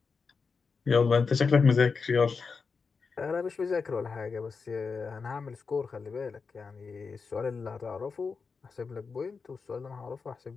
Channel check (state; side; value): quieter; right; 5.0 dB